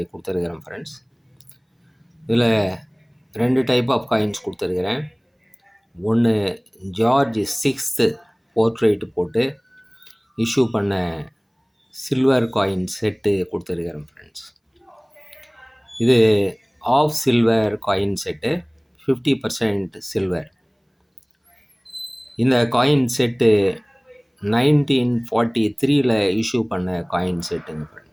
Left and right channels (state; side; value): identical; both; correlation 1.00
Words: கொடுத்துருக்குறேன் friends. இதில் 2 டைப் ஆஃப் காயின்ஸ் கொடுத்துருக்குறேன். ஒன்று ஜார்ஜ் 6th போர்ட்ரேட்டு போட்டு இஷ்யூ பண்ண சில்வர் காயின் செட்டு கொடுத்துருக்குறேன் ஃப்ரெண்ட்ஸ். இது half silver coin set, 50% silver. இந்த காயின் செட்டு 1943 இஷ்யூ பண்ண காயின் செட்டுங்க